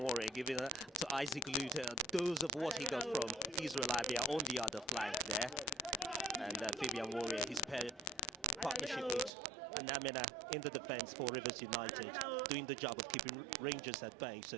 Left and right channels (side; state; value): left; drops out; at 9.3 s